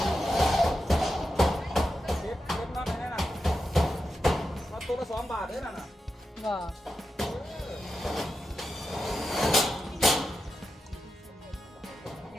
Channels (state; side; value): normal; both; correlation 0.89